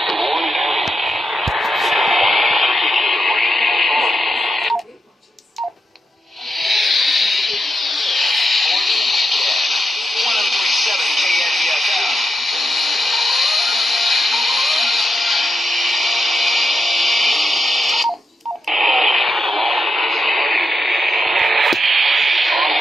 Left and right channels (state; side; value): normal; both; correlation 0.85